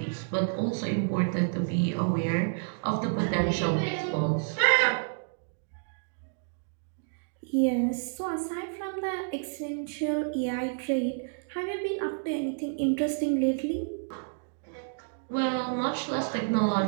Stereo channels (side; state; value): left; silent; digital silence